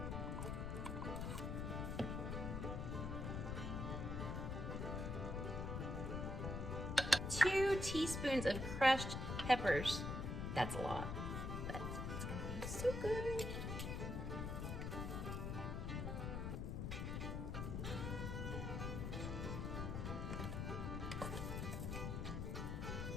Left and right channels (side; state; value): left; noise; rumble, 2 dB below the sound